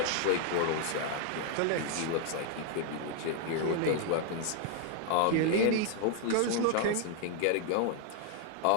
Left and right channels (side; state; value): both; different; correlation 0.00